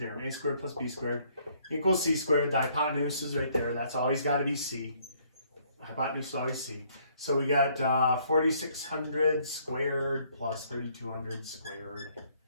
A squared plus B squared equals C squared. The hypotenuse is right there. That's always got to be C. The hypotenuse is always C. So we got 4,600 squared plus 3,200 squared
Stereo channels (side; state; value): both; inverted; correlation -0.65